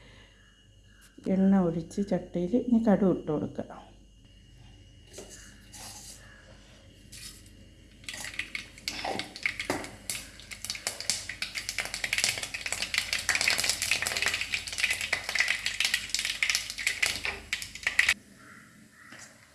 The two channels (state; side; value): identical; both; correlation 1.00